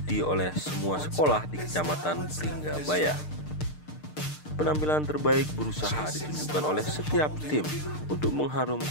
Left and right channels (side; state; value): right; late; 6.6 ms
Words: oleh semua sekolah di Kecamatan Pringgabaya. Penampilan terbaik berusaha ditunjukkan oleh setiap tim untuk